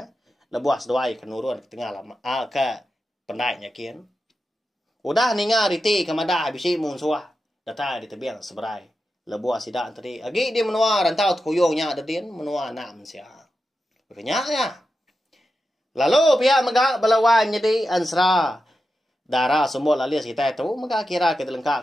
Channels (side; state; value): both; normal; correlation 0.90